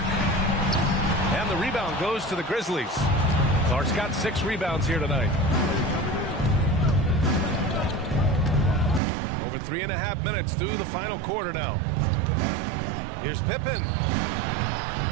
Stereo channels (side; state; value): left; drops out; at 9.0 s